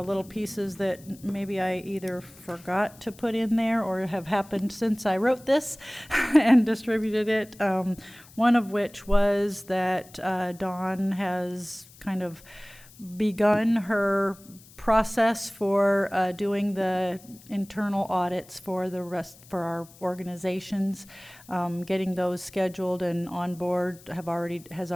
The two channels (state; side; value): noise; left; hiss, 23 dB below the sound